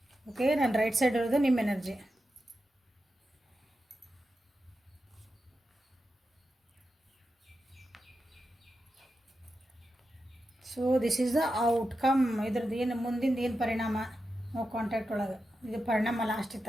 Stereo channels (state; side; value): normal; both; correlation 0.89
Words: ಓಕೆ, ನಾನು ರೈಟ್ ಸೈಡ್ ಇರೋದು ನಿಮ್ಮ energy. So this is the outcome. ಇದ್ರದ್ದು ಏನು ಮುಂದಿಂದ ಏನು ಪರಿಣಾಮ ನೋ ಕಾಂಟ್ಯಾಕ್ಟ್ ಒಳಗೆ. ಇದು ಪರಿಣಾಮ ಲಾಸ್ಟಿಗೆ